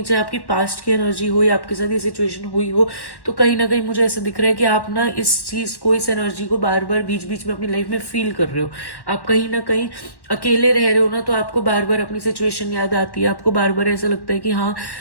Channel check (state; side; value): late; right; 1.1 ms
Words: चाहे आपकी पास्ट की एनर्जी हो या आपके साथ ये सिचुएशन हुई हो, तो कहीं ना कहीं मुझे ऐसा दिख रहा है कि आप ना इस चीज़ को, इस एनर्जी को बार बार बीच बीच में अपनी लाइफ में फील कर रहे हो। आप कहीं ना कहीं अकेले रह रहे हो ना, तो आपको बार बार अपनी सिचुएशन याद आती है, आपको बार बार ऐसा लगता है कि हाँ